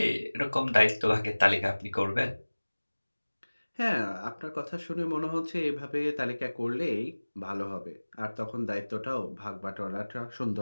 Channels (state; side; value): inverted; both; correlation -1.00